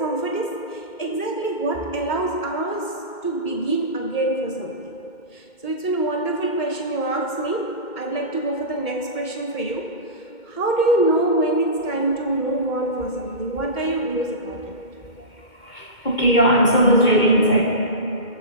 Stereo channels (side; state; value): right; late; 2.1 ms